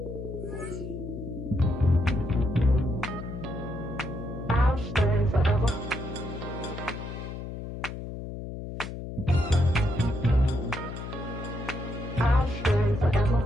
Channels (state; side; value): noise; left; hum, 8 dB below the sound